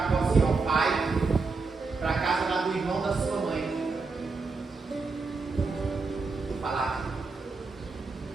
assim: ó, vai para a casa lá do irmão da sua mãe. Vou falar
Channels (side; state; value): left; quieter; 4.2 dB